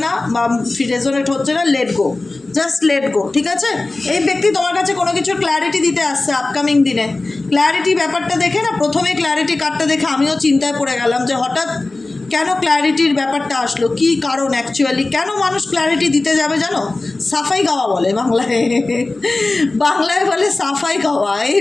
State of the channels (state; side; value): quieter; right; 3.2 dB